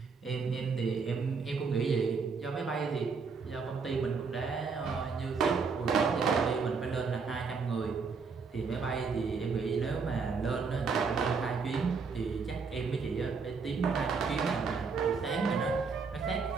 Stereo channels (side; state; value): left; quieter; 5.1 dB